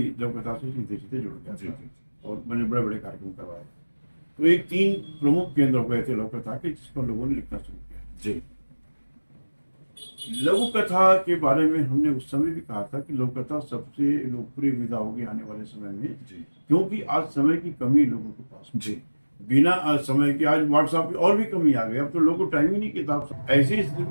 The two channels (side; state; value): both; inverted; correlation -1.00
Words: लोक कथा से सीधे सीधे जुड़ गया था और मैंने बड़े बड़े कार्यक्रम करवाए। तो एक 3 प्रमुख केंद्र हो गए थे लोक कथा के, जिस पर लोगों ने लिखना शुरू किया। जी। लघु कथा के बारे में हमने उस समय भी कहा था कि लोक कथा सबसे लोकप्रिय विधा होगी आने वाले समय में, जी। क्योंकि आज समय की कमी लोगों के पास। जी। बिना आज समय के, आज व्हाट्सएप पे और भी कमी आ गई, अब तो लोगों को टाइम ही नहीं किताब से। ऐसी स्थिति